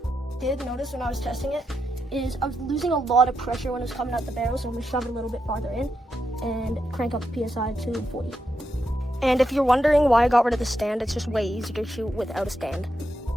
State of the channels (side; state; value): both; normal; correlation 0.84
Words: Did notice when I was testing it is I was losing a lot of pressure when it was coming out the barrel, so I'm gonna shove it a little bit farther in and crank up the PSI to 40. And if you're wondering why I got rid of the stand, it's just way easier to shoot without a stand.